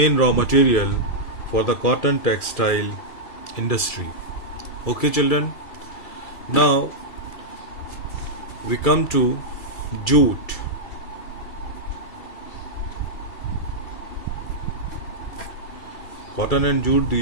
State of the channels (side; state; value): right; late; 2.3 ms